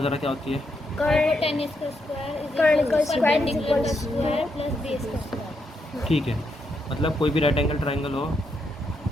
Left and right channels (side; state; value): both; normal; correlation 0.80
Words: क्या होती है। ठीक है, मतलब कोई भी राइट एंगल ट्रायंगल हो,